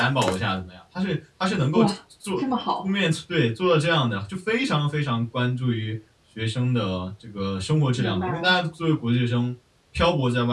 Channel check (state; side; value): identical; both; correlation 1.00